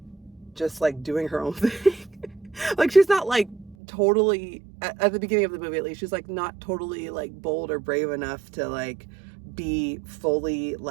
just like doing her own thing. Like, she's not like totally, at the beginning of the movie at least, she's like not totally like bold or brave enough to like be fully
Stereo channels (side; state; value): left; drops out; at 3.8 s